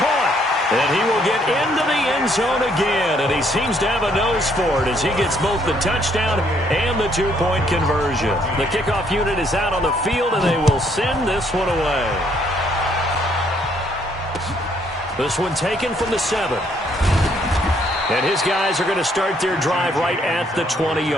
And he will get into the end zone again, and he seems to have a nose for it as he gets both the touchdown and the two-point conversion. The kickoff unit is out on the field, and they will send this one away. This one taken from the 7. And his guys are going to start their drive right at the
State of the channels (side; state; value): both; normal; correlation 0.68